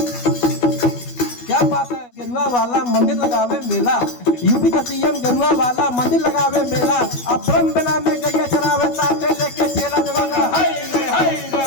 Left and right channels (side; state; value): right; late; 12 ms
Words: क्या बात है। गेरुआ वाला मंदिर लगावे मेला, यूपी का सीएम गेरुआ वाला मंदिर लगावे मेला, अब ब्रह्म बेला में गैया चरावे साथे लेके चेला बोले।